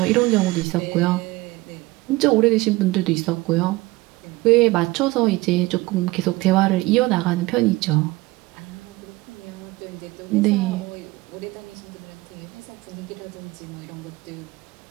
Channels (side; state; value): left; quieter; 20.5 dB